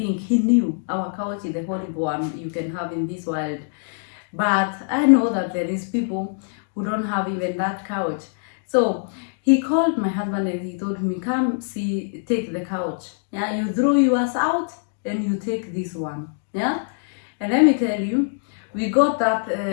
he knew our couch is the horrible one you can have in this world. But I know that there is people who don't have even that couch. So he called my husband and he told me, come see, take the couch. Yeah, you throw yours out and you take this one. Yeah, and let me tell you, we got that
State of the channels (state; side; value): silent; right; digital silence